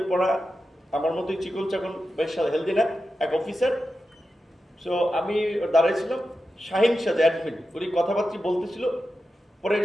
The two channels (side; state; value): both; normal; correlation 0.91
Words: পড়া, আমার মতোই চিকন চাকন, বেশ হেলদি না, এক অফিসার। সো আমি দাঁড়াইছিলাম, শাহিন শাহ অ্যাডমিন, উনি কথাবার্তা বলতেছিল। পরে